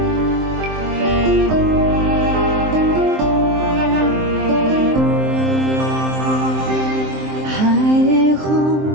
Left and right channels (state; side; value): late; left; 23 ms